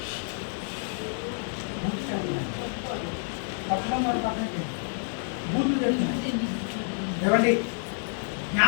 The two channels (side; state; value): right; silent; digital silence